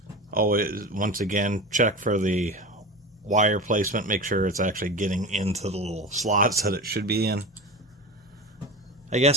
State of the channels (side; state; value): both; normal; correlation 0.29